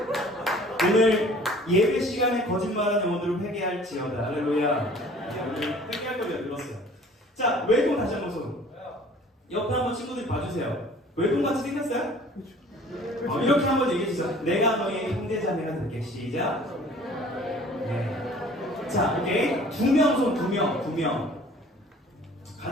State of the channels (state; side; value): normal; both; correlation 0.50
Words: 오늘 예배 시간에 거짓말한 영혼들을 회개할지어다. 할렐루야. 오늘 회개할 거리가 늘었어요. 자, 외동 다시 한번 손. 옆에 한번 친구들이 봐주세요. 외동 같이 생겼어요? 이렇게 한번 얘기해 주세요. 내가 너의 형제자매가 될게. 시작. 네. 자, 오케이. 두 명 손, 두 명.